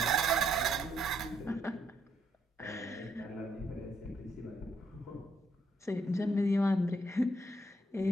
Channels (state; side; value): normal; both; correlation 0.73